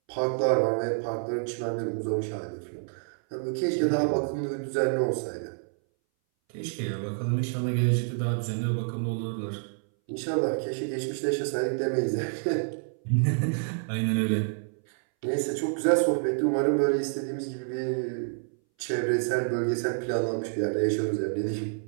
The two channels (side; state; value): left; silent; 59 dB below the other